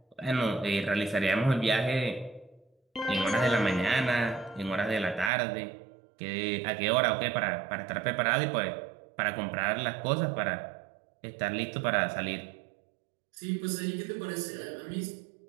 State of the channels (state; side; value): drops out; left; at 5.3 s